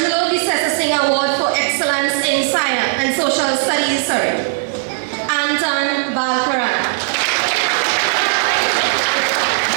Visessa Singh Award for Excellence in Science and Social Studies, Anton Balkaran.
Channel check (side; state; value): left; silent; 67 dB below the other